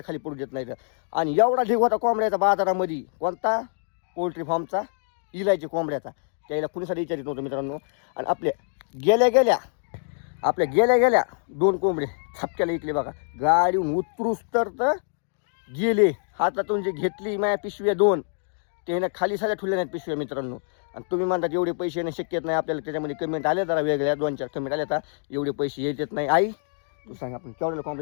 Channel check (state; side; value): silent; right; 61 dB below the other